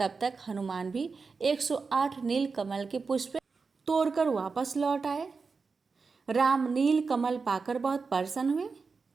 तक हनुमान भी 108 नीलकमल के पुष्प तोड़कर वापस लौट आए। राम नीलकमल पाकर बहुत प्रसन्न हुए।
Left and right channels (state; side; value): quieter; left; 4.7 dB